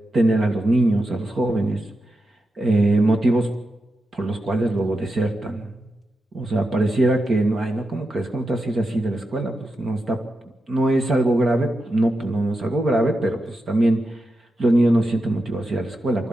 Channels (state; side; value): normal; both; correlation 0.88